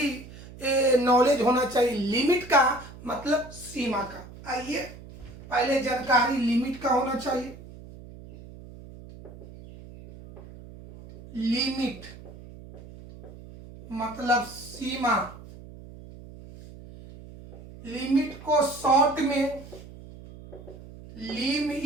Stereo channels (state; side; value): noise; right; hum, 17 dB below the sound